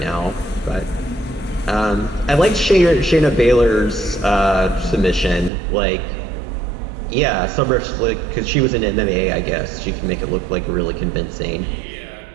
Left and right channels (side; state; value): left; drops out; at 5.5 s